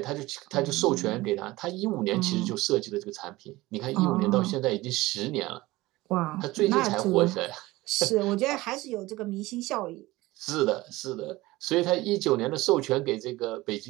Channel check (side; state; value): left; quieter; 19.3 dB